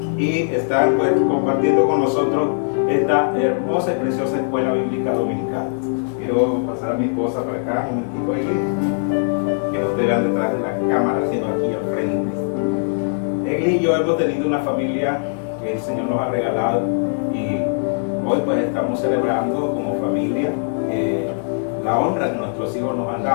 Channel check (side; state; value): right; silent; digital silence